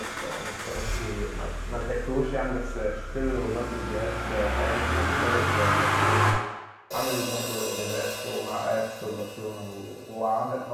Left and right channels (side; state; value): both; identical; correlation 1.00